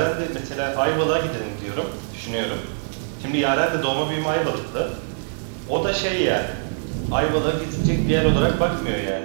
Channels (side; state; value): left; silent; 63 dB below the other